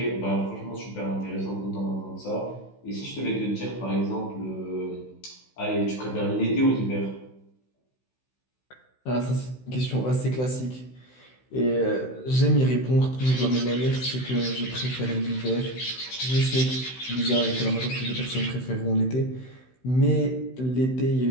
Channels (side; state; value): right; late; 16 ms